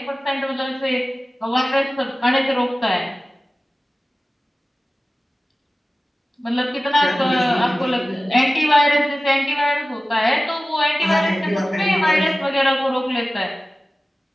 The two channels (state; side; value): normal; both; correlation 0.96